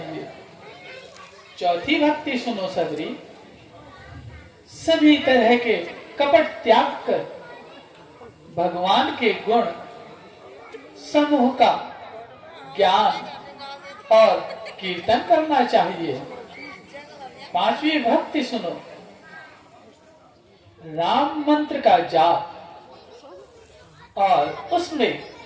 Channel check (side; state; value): both; identical; correlation 1.00